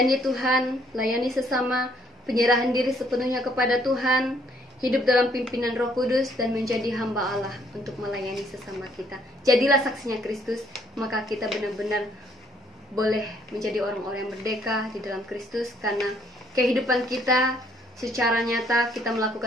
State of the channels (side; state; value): both; normal; correlation 0.66